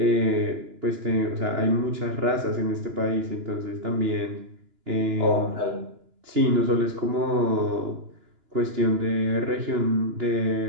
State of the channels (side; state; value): left; late; 2.9 ms